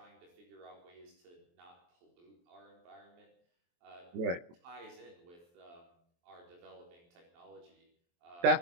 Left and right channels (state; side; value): late; left; 23 ms